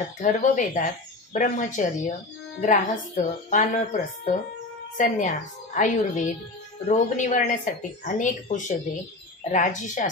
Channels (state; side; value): quieter; right; 3.0 dB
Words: ब्रह्मचर्य, ग्राहस्थ, वानप्रस्थ, संन्यास, आयुर्वेद, रोग निवारण्यासाठी अनेक औषधे,